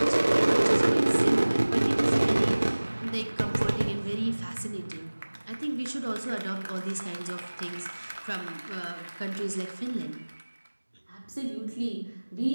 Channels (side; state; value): both; inverted; correlation -1.00